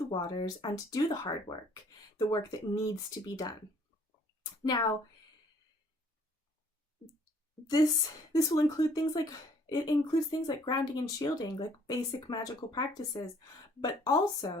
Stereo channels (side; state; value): both; normal; correlation 0.60